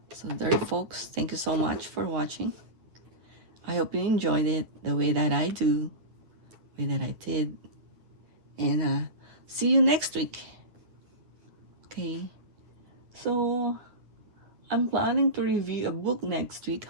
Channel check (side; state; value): left; late; 9.4 ms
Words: So there, folks, thank you so much for watching. I hope you enjoyed it the way that I do, the way that I did. And see you next week. Okay, so I'm planning to review a book next week.